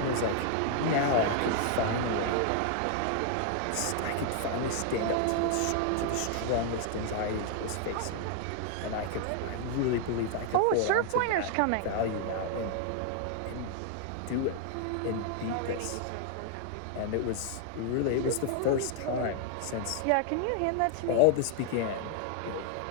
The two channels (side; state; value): both; different; correlation 0.00